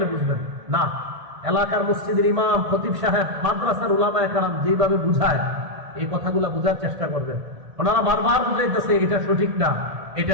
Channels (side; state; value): left; late; 1.7 ms